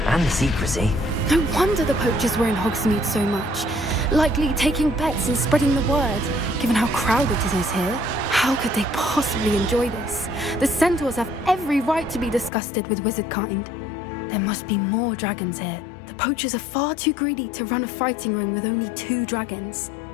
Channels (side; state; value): right; drops out; at 12.5 s